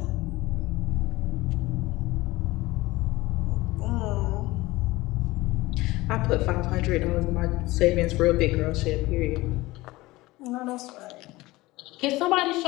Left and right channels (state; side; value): quieter; right; 19.7 dB